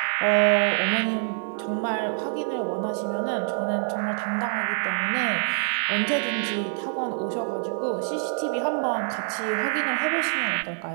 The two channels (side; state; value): left; silent; digital silence